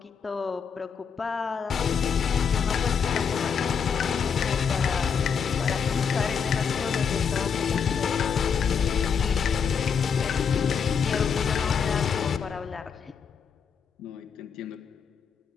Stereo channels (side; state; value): right; quieter; 6.6 dB